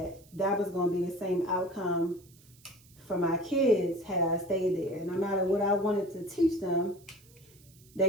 was going to be the same outcome for my kids had I stayed there. No matter what I wanted to teach them,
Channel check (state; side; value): noise; right; hiss, 27 dB below the sound